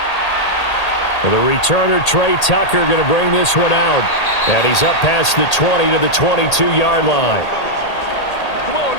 The returner, Trey Tucker, going to bring this one out. And he's up past the 20 to the 22-yard line. Come on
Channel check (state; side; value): late; right; 1.8 ms